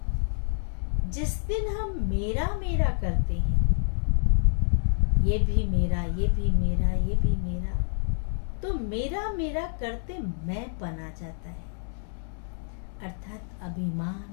जिस दिन हम मेरा मेरा करते हैं, ये भी मेरा, ये भी मेरा, ये भी मेरा, तो मेरा मेरा करते मैं पन आ जाता है, अर्थात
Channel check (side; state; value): right; silent; digital silence